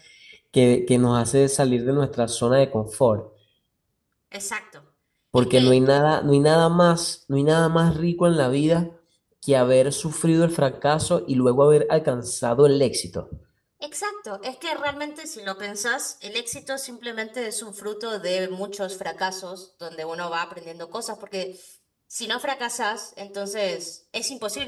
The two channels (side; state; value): both; identical; correlation 1.00